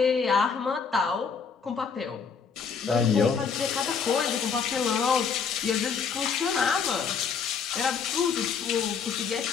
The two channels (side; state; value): right; quieter; 6.0 dB